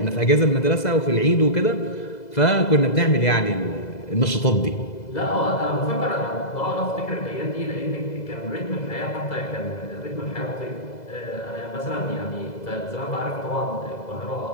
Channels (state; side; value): late; right; 2.0 ms